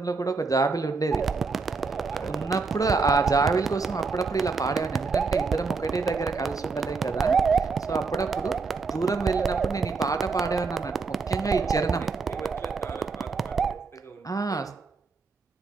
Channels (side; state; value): left; quieter; 4.5 dB